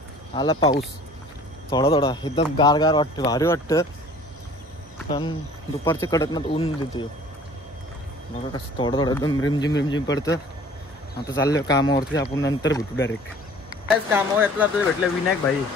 आला पाऊस. थोडा एकदम गार वाटतं. भारी वाटतं. पण दुपारच्या कडकनात ऊन देते. बघा कसं थोडं एकदम रिमझिम पडतं. आता चाललं कामावरती. आपण नंतर भेटू डायरेक्ट. कायच कामावर येतला आपल्याला भेटलं विनायक भाई.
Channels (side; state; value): both; normal; correlation 0.49